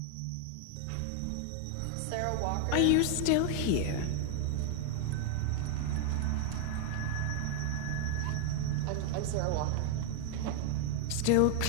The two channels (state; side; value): different; both; correlation 0.00